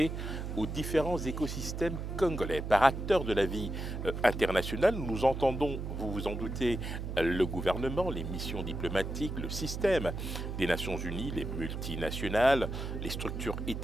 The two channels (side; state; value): right; noise; hum, 5 dB below the sound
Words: aux différents écosystèmes congolais. Par acteurs de la vie internationale, nous entendons, vous vous en doutez, le gouvernement, les missions diplomatiques, le système des Nations Unies, les multinationales, les structures